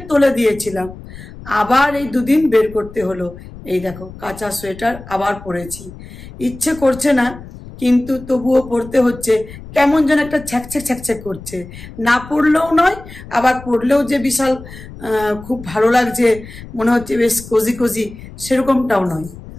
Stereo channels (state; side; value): noise; left; rumble, 16 dB below the sound